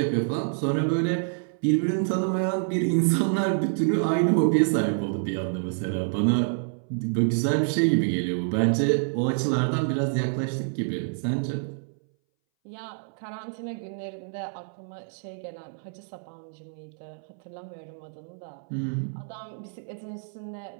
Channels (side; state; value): left; silent; 60 dB below the other